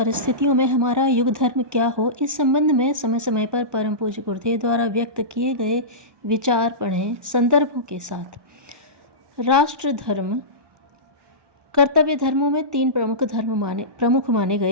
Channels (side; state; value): left; late; 1.2 ms